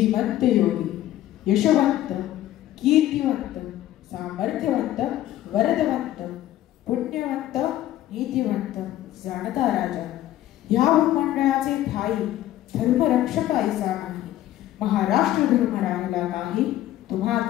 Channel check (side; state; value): right; quieter; 13.7 dB